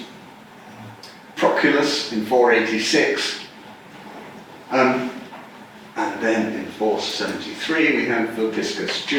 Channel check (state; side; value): identical; both; correlation 1.00